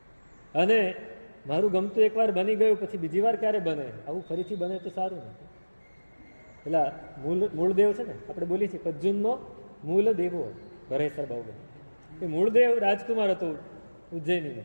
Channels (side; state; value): both; inverted; correlation -1.00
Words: અને મારું ગમતું એકવાર બની ગયું પછી બીજી વાર ક્યારે બને, આવું ફરીથી બને તો સારું નથી. પેલા મૂળદેવ છે ને, આપણે બોલીએ છીએ પજ્જુનનો મૂળ દેવો ભરેસર બાહુબલી. એ મૂળદેવ રાજકુમાર હતો ઉજ્જૈનીનો.